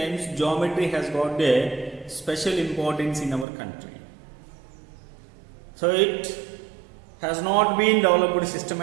geometry has got a special importance in our country. So it has not been developed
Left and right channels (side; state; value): left; drops out; at 3.5 s